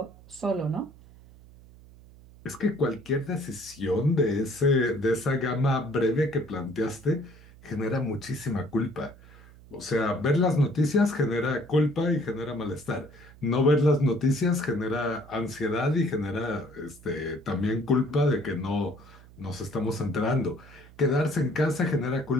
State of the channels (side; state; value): right; noise; hum, 22 dB below the sound